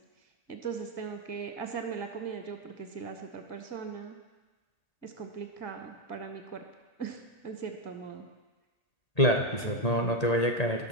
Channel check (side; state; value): right; late; 1.8 ms